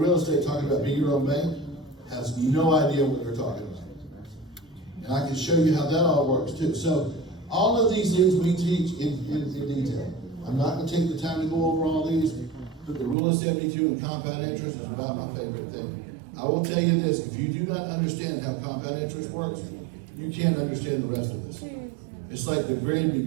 estate talking about being your own bank, has no idea what they're talking about. And I can show you how that all works too. So all of these things we teach in detail. I'm not going to take the time to go over all these, but the rule of 72 and compound interest is about my favorite thing. I will tell you this, if you do not understand how compound interest works, you can't understand the rest of this. It's like the very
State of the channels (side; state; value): left; drops out; at 13.2 s